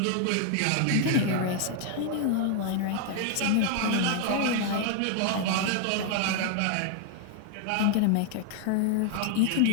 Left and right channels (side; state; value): both; different; correlation 0.00